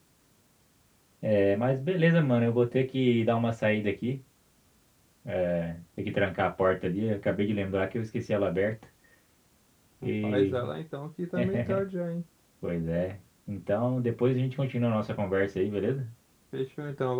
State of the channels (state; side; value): identical; both; correlation 1.00